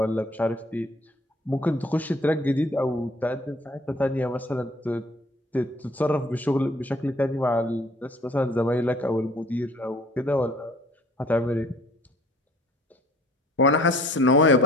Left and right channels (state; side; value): normal; both; correlation 0.54